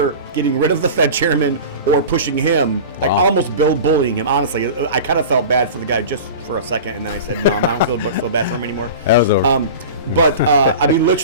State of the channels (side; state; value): both; inverted; correlation -0.34